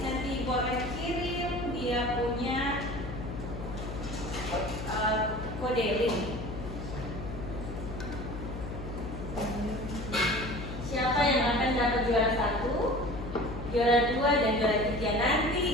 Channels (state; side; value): noise; left; hum, 8 dB below the sound